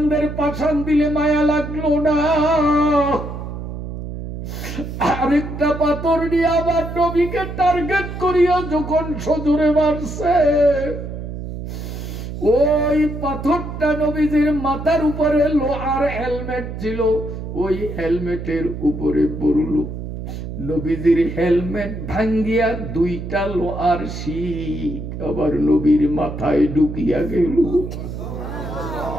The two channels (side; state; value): right; noise; hum, 8 dB below the sound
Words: পাশান দিলে মায়া লাগলো না। আরেকটা পাথর নিয়ে আবার নবীকে টার্গেট করিয়া যখন সজোরে মারছে, ওই পাথরটা নবীজির মাথার উপরে লোহার হেলমেট ছিল, ওই হেলমেটের উপরে পড়ল। নবীজির হেলমেট ভাঙ্গিয়া দুইটা লোহার শিক আবার নবীর মাথায় ঢুকিয়া গেল।